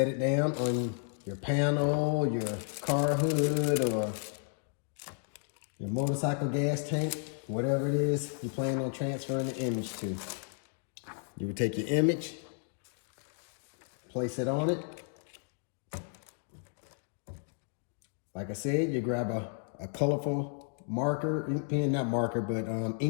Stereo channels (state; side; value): silent; right; 56 dB below the other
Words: it down on your panel, your car hood, or your motorcycle gas tank, whatever it is you plan on transferring the image to. You would take your image, place it on it. Like I said, you grab a colorful marker, ink pen, not marker, but